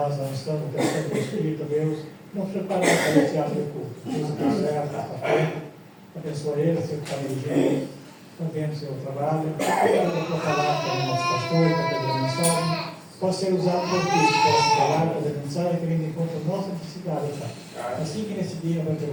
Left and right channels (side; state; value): both; identical; correlation 1.00